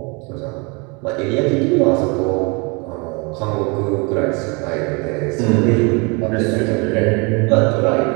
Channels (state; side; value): quieter; left; 30.0 dB